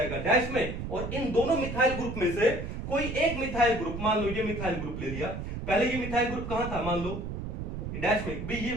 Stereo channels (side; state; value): right; noise; rumble, 6 dB below the sound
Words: डैश में, और इन दोनों मिथाइल ग्रुप में से कोई एक मिथाइल ग्रुप, मान लो ये मिथाइल ग्रुप ले लिया, पहले ये मिथाइल ग्रुप कहां था, मान लो डैश में, भी ये